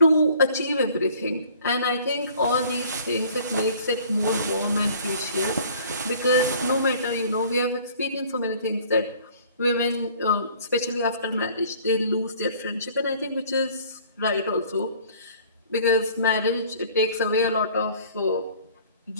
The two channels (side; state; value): both; inverted; correlation -0.52